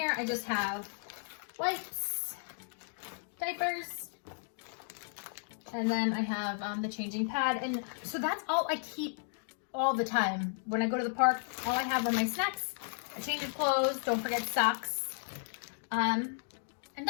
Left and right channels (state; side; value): silent; right; digital silence